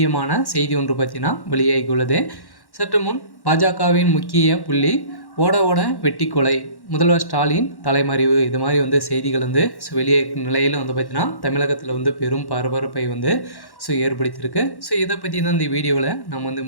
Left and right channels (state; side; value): late; right; 1.1 ms